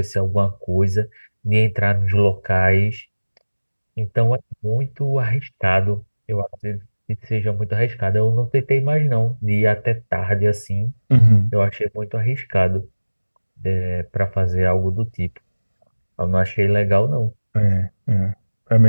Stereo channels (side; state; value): both; inverted; correlation -1.00